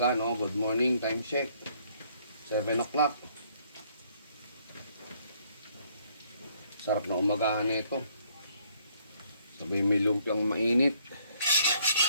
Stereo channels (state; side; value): inverted; both; correlation -0.66